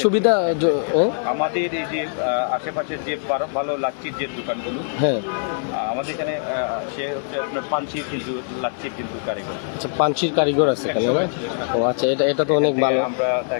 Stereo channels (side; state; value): right; silent; digital silence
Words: সুবিধা হ্যাঁ? আমাদের এই যে আশেপাশের যে ভালো লাচ্ছির যে দোকানগুলো, হ্যাঁ, আমাদের এখানে সে হচ্ছে আপনার পাঞ্চির কিন্তু লাচ্ছির কিন্তু কারিগর। আচ্ছা, পাঞ্চির কারিগর আছে এখানে না? ও আচ্ছা, এটা তো অনেক ভালো। আমরা